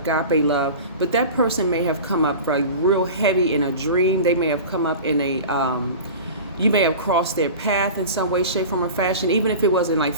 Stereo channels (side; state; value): both; inverted; correlation -0.34